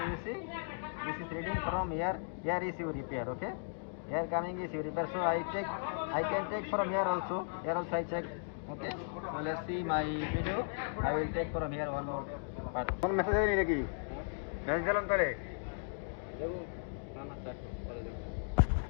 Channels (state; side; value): silent; right; digital silence